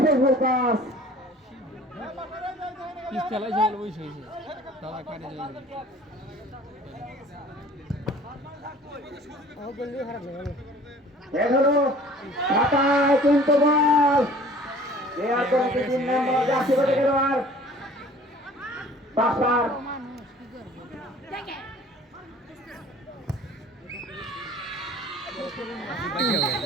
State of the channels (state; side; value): normal; both; correlation 0.49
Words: সেই ভুল পাস কিন্তু বল দেওয়ার পরে 3 নম্বর জাতীয় দল থেকে পাসার